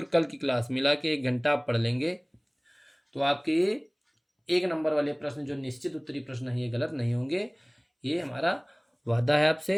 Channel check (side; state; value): both; identical; correlation 1.00